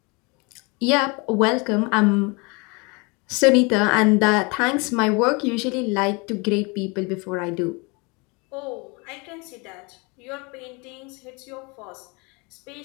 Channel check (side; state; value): right; quieter; 29.1 dB